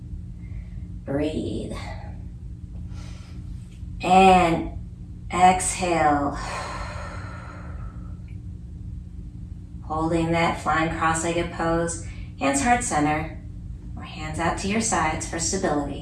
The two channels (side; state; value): both; identical; correlation 1.00